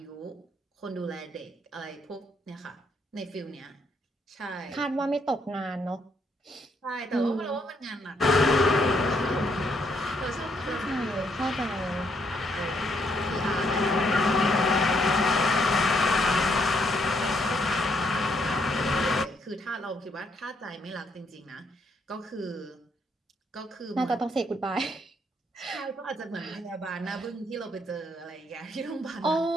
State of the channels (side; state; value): both; normal; correlation 0.73